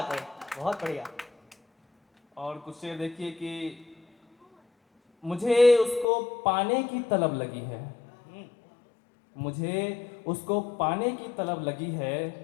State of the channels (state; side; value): drops out; right; at 6.1 s